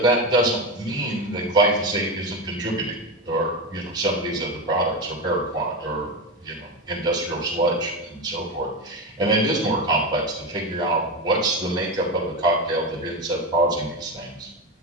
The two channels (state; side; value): normal; both; correlation 0.17